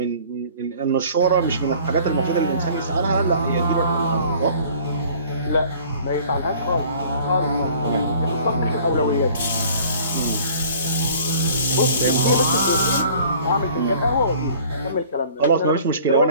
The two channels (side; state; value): both; inverted; correlation -0.51